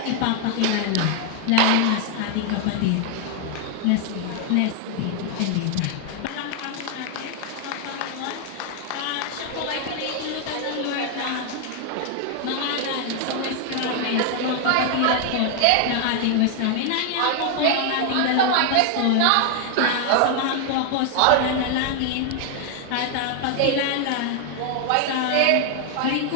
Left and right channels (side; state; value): both; different; correlation 0.00